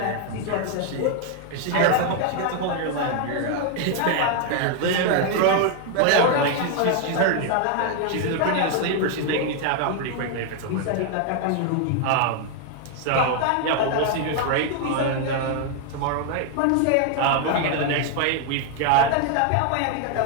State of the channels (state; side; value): different; both; correlation 0.00